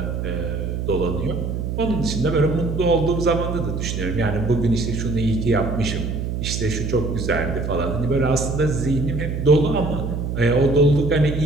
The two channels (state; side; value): noise; right; hum, 3 dB below the sound